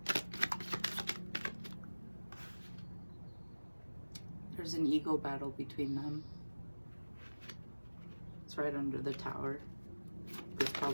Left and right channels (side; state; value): both; inverted; correlation -1.00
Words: There's an ego battle between them. It's right under the Tower. That's